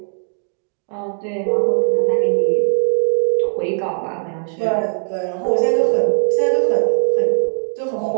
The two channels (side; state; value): left; silent; digital silence